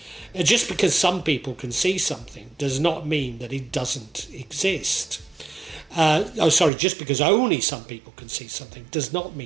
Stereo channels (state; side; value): drops out; left; at 6.7 s